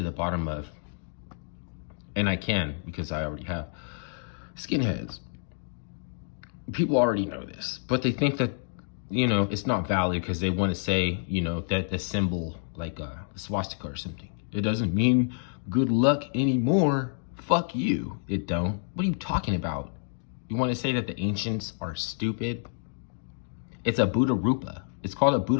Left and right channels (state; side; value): silent; right; digital silence